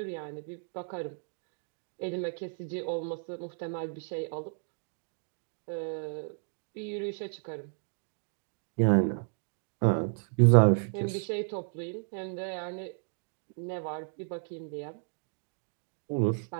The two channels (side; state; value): left; silent; 56 dB below the other